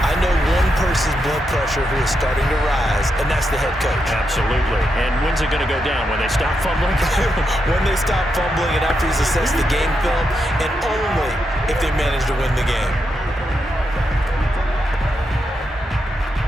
know one person's blood pressure who is starting to rise, and that's the head coach. Absolutely. And when's it going to go down? When they stop fumbling? When they stop fumbling and after he's assessed the game film, and only if they manage to win the game.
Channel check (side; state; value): both; normal; correlation 0.84